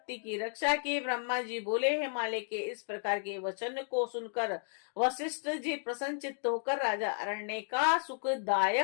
की रक्षा की। ब्रह्मा जी बोले, हिमालय के इस प्रकार के वचन को सुनकर वशिष्ठ जी प्रसन्नचित्त होकर राजा अरण्य का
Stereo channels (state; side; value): silent; right; 56 dB below the other